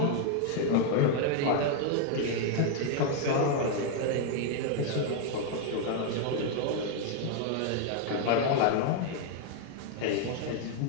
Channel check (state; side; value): different; both; correlation 0.00